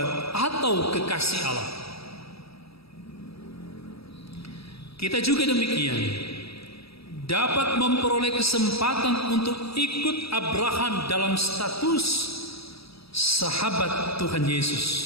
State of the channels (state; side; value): late; right; 0.77 ms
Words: atau kekasih Allah. Kita juga demikian dapat memperoleh kesempatan untuk ikut Abraham dalam status sahabat Tuhan Yesus,